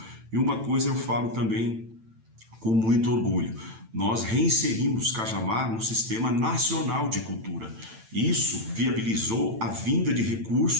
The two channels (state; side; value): late; left; 8.9 ms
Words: E uma coisa eu falo também com muito orgulho: nós reinserimos Cajamar no Sistema Nacional de Cultura. Isso viabilizou a vinda de